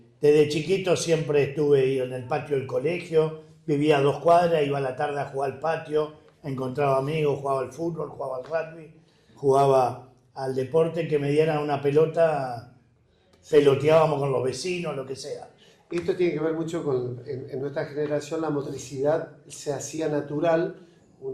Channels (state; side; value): identical; both; correlation 1.00